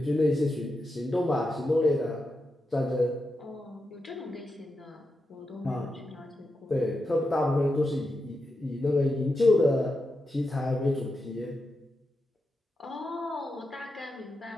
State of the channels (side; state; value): both; normal; correlation 0.88